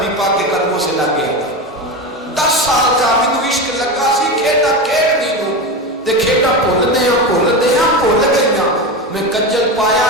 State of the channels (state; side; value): normal; both; correlation 0.21